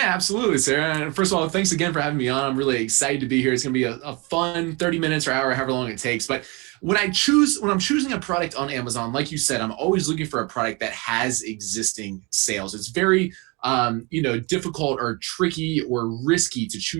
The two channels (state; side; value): quieter; left; 28.1 dB